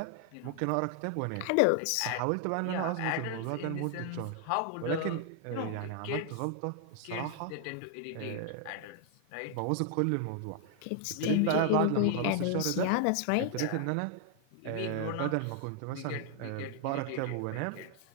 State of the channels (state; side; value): different; both; correlation 0.00